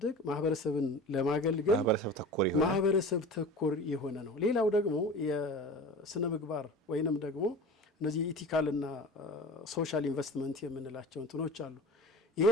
ማህበረሰብን ለማገልገል ማህበረሰብ ተኮር የሆነ ነው። ሌላው ደግሞ የስነ ምግባር ወይንም ደግሞ እነዚህ ኢቲካልና ሶሻል ኢንቨስትመንት የምንላቸው እንትኖች አሉ። ይሄ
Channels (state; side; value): normal; both; correlation 0.36